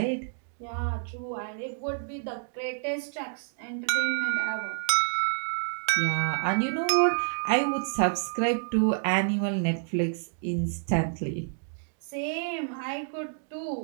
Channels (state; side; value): silent; left; digital silence